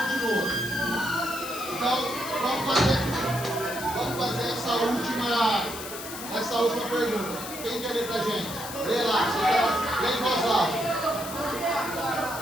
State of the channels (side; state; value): left; noise; hiss, 10 dB below the sound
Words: Então, vamos fazer essa última pergunta. Quem quer ler pra gente? Lê lá, lê em voz alta.